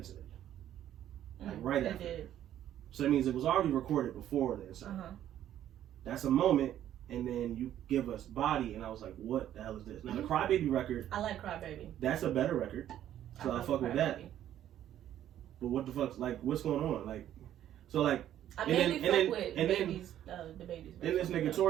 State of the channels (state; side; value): quieter; left; 11.5 dB